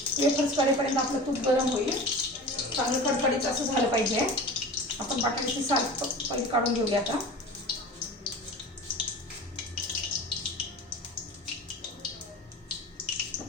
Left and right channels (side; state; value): both; normal; correlation 0.36